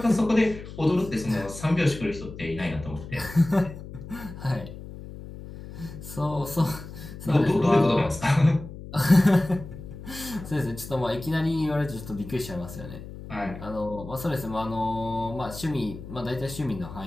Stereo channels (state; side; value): noise; left; hum, 13 dB below the sound